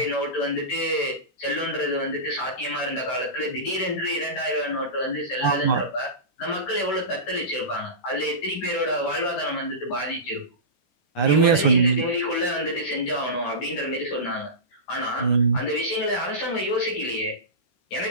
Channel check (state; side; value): late; right; 16 ms